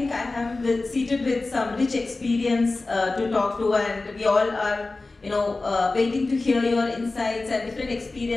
I am seated with some rich experience to talk to, and we all are, waiting to hear your insights and different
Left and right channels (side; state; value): right; quieter; 3.4 dB